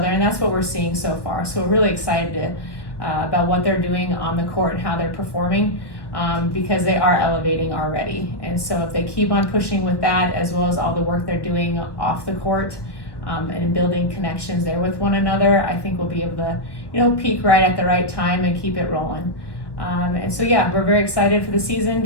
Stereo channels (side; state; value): right; late; 1.3 ms